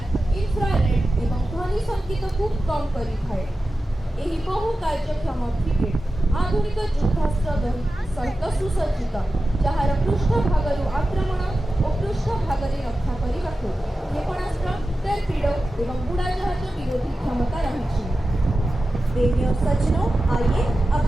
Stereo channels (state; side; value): normal; both; correlation 0.93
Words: इन्फ्रारेड एवं ध्वनि संकेत को कम करिଥାଏ। ଏହି ବହୁ କାର୍ଯ୍ୟକ୍ଷମ ଫ୍ରିଗେଟ୍ ଆଧୁନିକ ଯୁଦ୍ଧାସ୍ତ୍ର ସହିତ ସୁସଜ୍ଜିତ, ଯାହାର ପୃଷ୍ଠଭାଗରୁ ଆକ୍ରମଣ ଓ ପୃଷ୍ଠଭାଗରେ ରକ୍ଷା କରିବାକୁ କ୍ଷେପଣାସ୍ତ୍ର, ଟର୍ପିଡୋ ଏବଂ ବୁଡ଼ାଜାହାଜ ବିରୋଧୀ କ୍ଷମତା ରହିଛି। देवी और सज्जनों, आइए अब